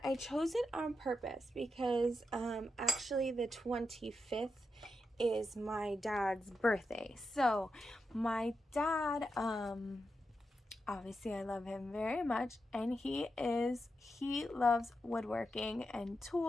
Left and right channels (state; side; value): normal; both; correlation 0.87